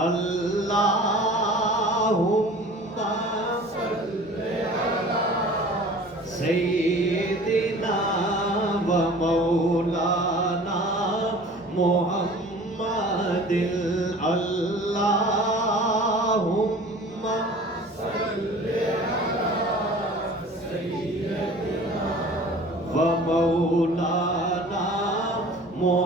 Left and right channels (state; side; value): normal; both; correlation 0.44